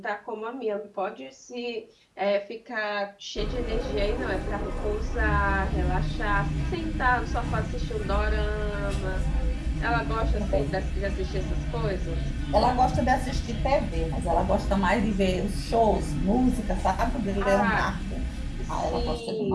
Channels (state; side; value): identical; both; correlation 1.00